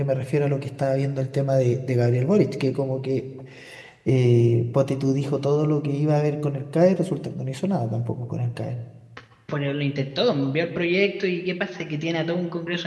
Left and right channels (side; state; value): both; identical; correlation 1.00